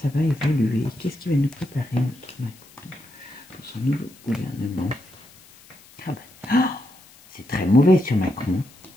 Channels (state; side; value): noise; left; hiss, 25 dB below the sound